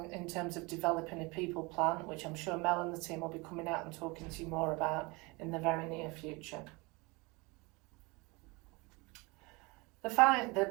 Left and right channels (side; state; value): left; quieter; 26.0 dB